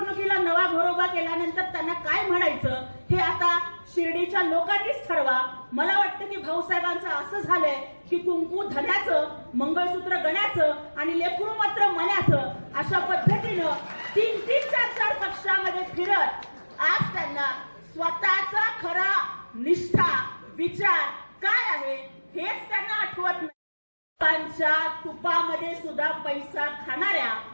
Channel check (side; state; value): both; inverted; correlation -1.00